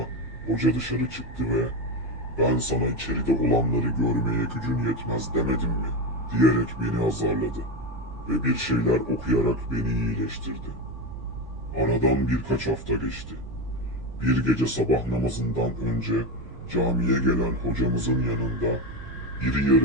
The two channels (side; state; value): right; noise; rumble, 16 dB below the sound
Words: hoca dışarı çıktı ve "Ben sana içeride olanları görmeye gücün yetmez demedim mi?" diyerek beni azarladı ve bir şeyler okuyarak beni iyileştirdi. Aradan birkaç hafta geçti. Bir gece sabah namazından önce camiye gelen hocamızın yanında iri